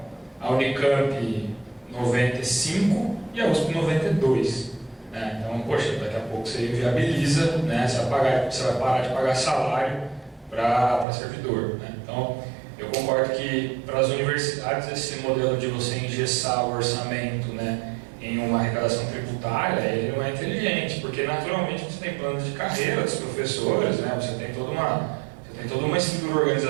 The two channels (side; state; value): left; drops out; at 11.1 s